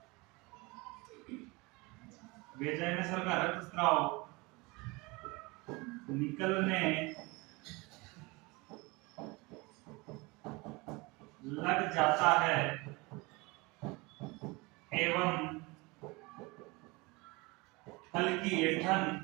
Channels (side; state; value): left; quieter; 25.0 dB